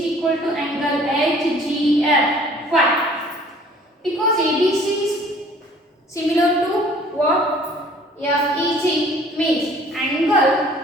equal to angle HGF. Why? Because ABC is similar to what? FEG, means angle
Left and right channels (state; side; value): normal; both; correlation 0.53